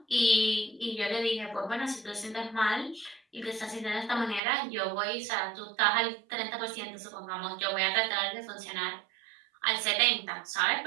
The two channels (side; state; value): left; drops out; at 4.4 s